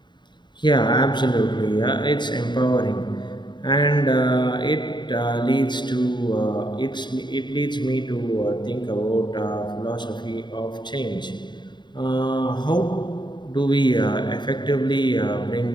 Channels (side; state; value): right; late; 0.22 ms